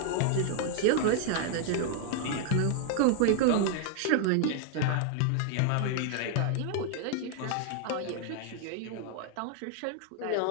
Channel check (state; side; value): different; both; correlation 0.00